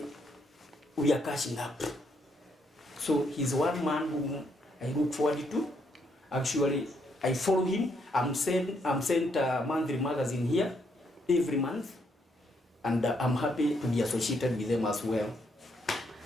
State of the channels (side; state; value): both; normal; correlation 0.74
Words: we are catching up. So he's one man whom I look forward to. Actually, I follow him. I'm sent a monthly magazine here every month. And I'm happy to be associated with them as well.